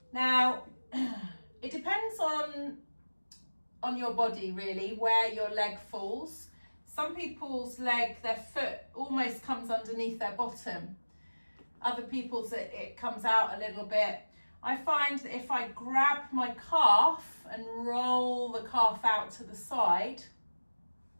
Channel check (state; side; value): inverted; both; correlation -1.00